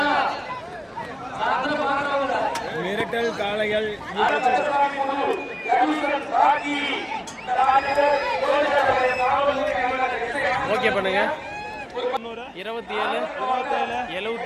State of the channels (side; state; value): both; identical; correlation 1.00